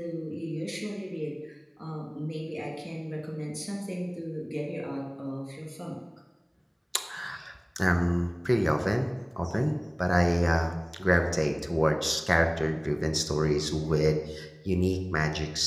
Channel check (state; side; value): identical; both; correlation 1.00